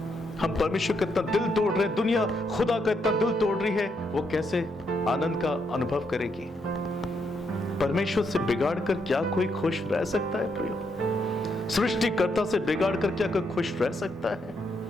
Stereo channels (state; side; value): normal; both; correlation 0.78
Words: हम परमेश्वर का इतना दिल तोड़ रहे हैं, दुनिया खुदा का इतना दिल तोड़ रही है, वो कैसे आनंद का अनुभव करेगी? परमेश्वर से बिगाड़ कर क्या कोई खुश रह सकता है प्रियो? सृष्टिकर्ता से बिगाड़ कर क्या कोई खुश रह सकता है?